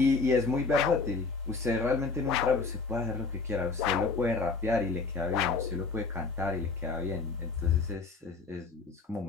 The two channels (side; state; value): right; quieter; 4.4 dB